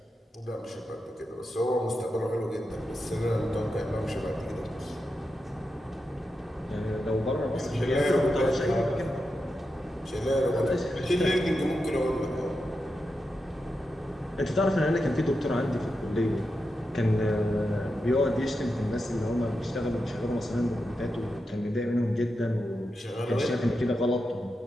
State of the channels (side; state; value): both; normal; correlation 0.88